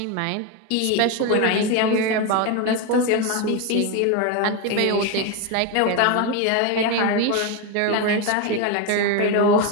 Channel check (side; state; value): both; different; correlation 0.03